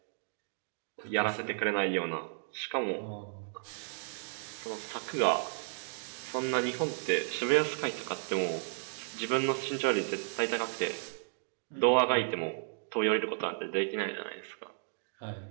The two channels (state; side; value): silent; left; digital silence